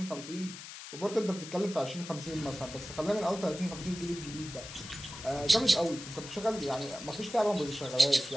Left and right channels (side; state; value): left; noise; hiss, 12 dB below the sound